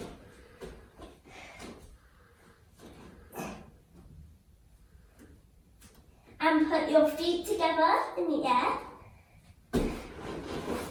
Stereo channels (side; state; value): both; identical; correlation 1.00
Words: put your feet together in the air.